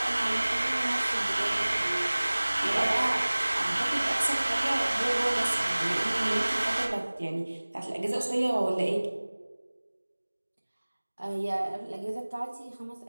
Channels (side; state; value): both; inverted; correlation -1.00